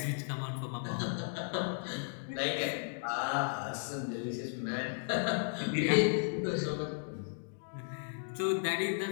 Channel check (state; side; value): silent; right; digital silence